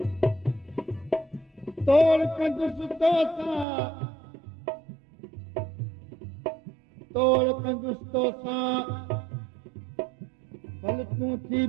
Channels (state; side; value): drops out; left; at 3.7 s